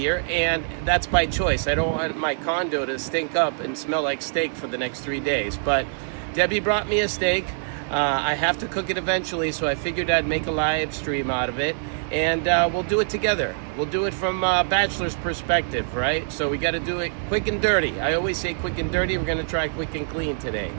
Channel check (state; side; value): silent; left; 60 dB below the other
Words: and that's by choice. I don't want my condo to stink up and smell like steak for the next 3 days, but Debbie brought me a steak. I have to cook it eventually, so I figured I'd make a live stream out of it, and we'll do it together. We'll do it from a bachelor's perspective, right? So we got to do it quick and dirty. I always say quick and dirty. We're going to try quick and clean today.